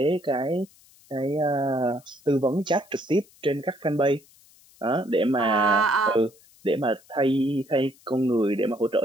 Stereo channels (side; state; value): left; noise; hiss, 28 dB below the sound